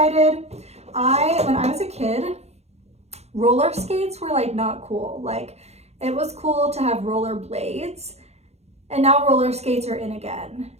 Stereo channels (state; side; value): late; left; 0.31 ms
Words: When I was a kid, roller skates were like not cool. Like, it was cool to have roller blades, and now roller skates are in again.